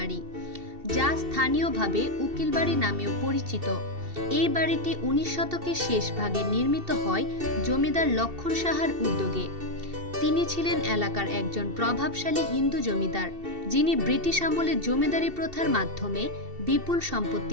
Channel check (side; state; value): left; late; 2.7 ms